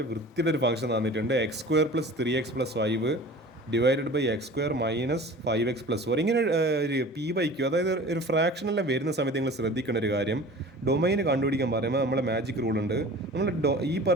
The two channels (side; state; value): both; normal; correlation 0.41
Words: വൃത്തിയുടെ ഒരു ഫംഗ്ഷൻ തന്നിട്ടുണ്ട്. x² + 3x + 5 divided by x² - 5x + 4. ഇങ്ങനെ ഒരു p/q, അതായത് ഒരു ഫ്രാക്ഷനെല്ലാം വരുന്ന സമയത്ത് നിങ്ങൾ ശ്രദ്ധിക്കേണ്ട ഒരു കാര്യം, ഡൊമൈൻ കണ്ടുപിടിക്കാൻ പറയുമ്പോൾ നമ്മളെ മാജിക് റൂൾ ഉണ്ട്. നമ്മൾ ഈ